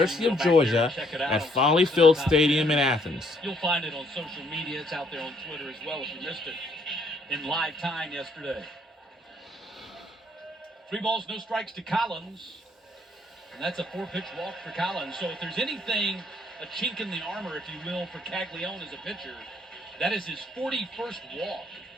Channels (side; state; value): both; normal; correlation 0.67